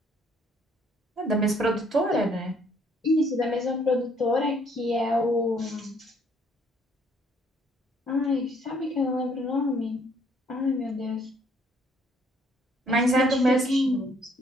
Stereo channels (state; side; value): normal; both; correlation 0.64